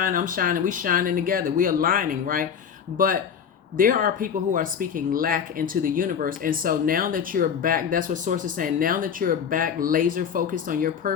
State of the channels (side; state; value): right; quieter; 7.6 dB